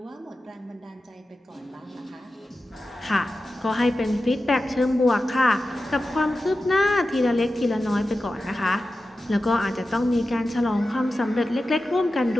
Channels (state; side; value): normal; both; correlation 0.93